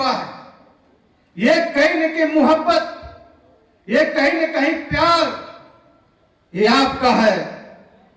है। ये कहीं न कहीं मोहब्बत, ये कहीं न कहीं प्यार, ये आपका है।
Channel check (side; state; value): both; identical; correlation 1.00